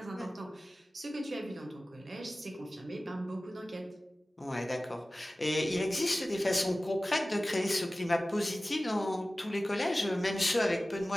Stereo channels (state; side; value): normal; both; correlation 0.97